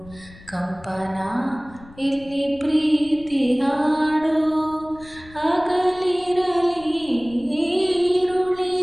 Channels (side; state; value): left; noise; rumble, 22 dB below the sound